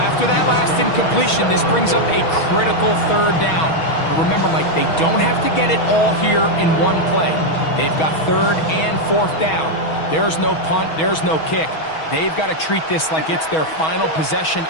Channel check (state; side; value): late; right; 6.3 ms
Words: after that last incompletion, this brings up a critical third down. But remember, Mike, they don't have to get it all here in one play. They've got third and fourth down. There's no punt, there's no kick. They've got to treat this like it's their final possession